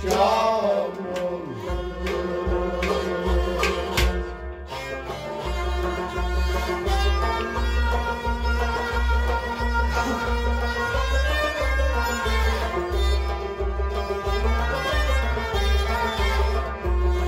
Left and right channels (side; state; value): both; identical; correlation 1.00